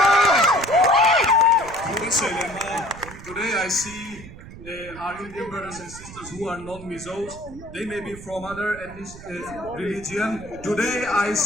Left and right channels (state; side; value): noise; right; rumble, 16 dB below the sound